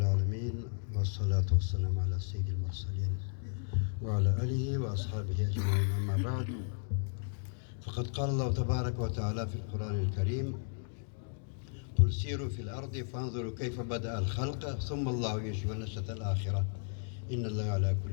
والصلاة والسلام على سيد المرسلين وعلى آله وأصحابه أجمعين. أما بعد، فقد قال الله تبارك وتعالى في القرآن الكريم: قل سيروا في الأرض فانظروا كيف بدأ الخلق ثم الله ينشئ النشأة الآخرة إن الله على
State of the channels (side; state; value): right; silent; digital silence